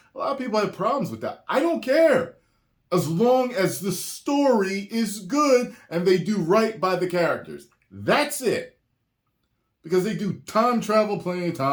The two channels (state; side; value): identical; both; correlation 1.00